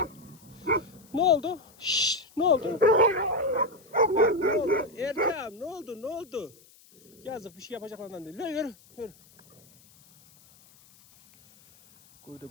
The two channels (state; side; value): noise; left; hiss, 27 dB below the sound